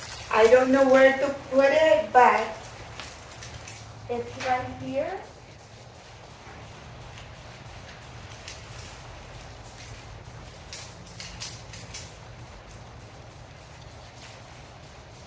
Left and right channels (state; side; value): identical; both; correlation 1.00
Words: I don't know where to put it, but it's right here.